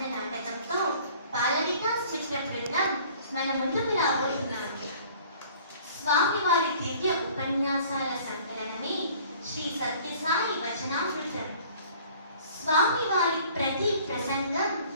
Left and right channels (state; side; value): inverted; both; correlation -0.51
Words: నాటకంతో బాలవికాస్ చిత్ర బృందం మన ముందుకు రాబోతున్నారు. స్వామివారి దివ్య ఉపన్యాసాల సంకలనమే శ్రీ సత్యసాయి వచనామృతం. స్వామివారి ప్రతి ప్రసంగం